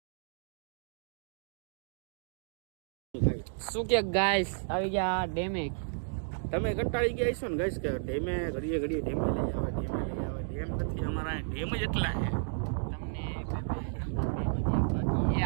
શું કે ગાઈસ આવી ગયા ડેમે. તમે કંટાળી ગયા છો ને ગાઈસ કે ડેમે ઘડીએ ડેમે લઈ આવે ડેમ નથી અમારા ડેમ જ એટલા છે. તમને એ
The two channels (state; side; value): silent; left; digital silence